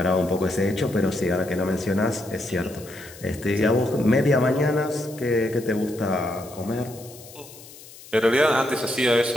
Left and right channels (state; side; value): noise; left; hiss, 19 dB below the sound